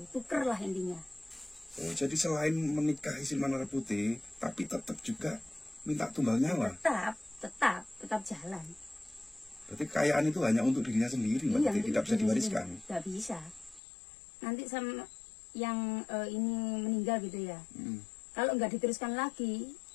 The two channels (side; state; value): right; drops out; at 13.8 s